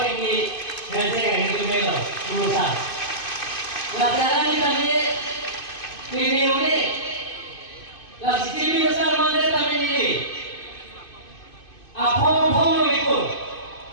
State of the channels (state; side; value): late; right; 2.5 ms